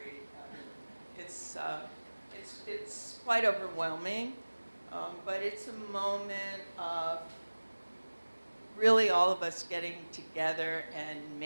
It's quite overwhelming, but it's a moment of really all of us getting together and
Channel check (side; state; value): both; inverted; correlation -1.00